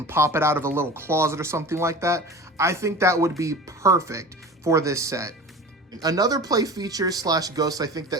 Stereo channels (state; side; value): normal; both; correlation 0.36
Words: pop it out of a little closet or something like that. I think that would be perfect for this set. Another play feature slash ghost I think